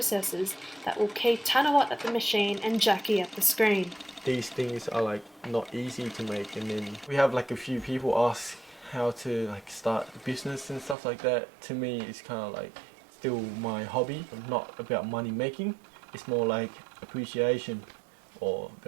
that will keep Tanawat at the machine and Jackie at the screen. These things are not easy to make, and then we have a few people ask how to start a business and stuff like that. To me, it's kind of still my hobby, not about money making. It's more like appreciation or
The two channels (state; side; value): drops out; left; at 11.0 s